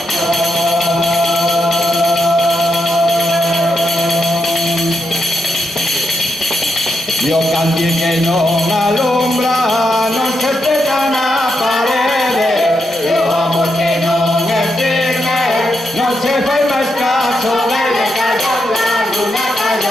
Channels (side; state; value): both; normal; correlation 0.84